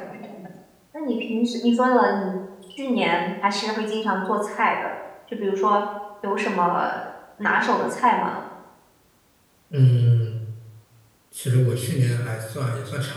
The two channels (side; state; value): both; identical; correlation 1.00